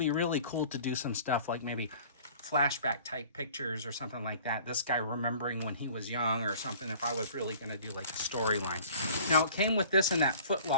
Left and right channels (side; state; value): both; inverted; correlation -0.48